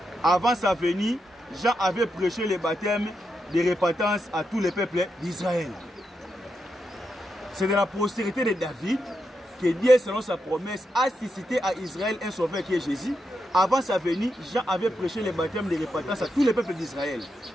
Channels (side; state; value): both; normal; correlation 0.85